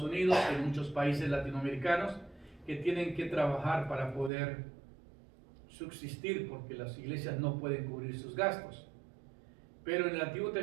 Unidos, en muchos países latinoamericanos que tienen que trabajar para poder subsistir porque las iglesias no pueden cubrir sus gastos. Pero en el Antiguo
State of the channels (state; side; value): drops out; left; at 4.3 s